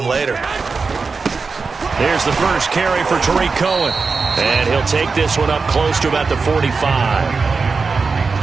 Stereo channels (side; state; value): left; quieter; 4.6 dB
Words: later. Here's the first carry for Tariq Cohen. And he'll take this one up close to about the 45.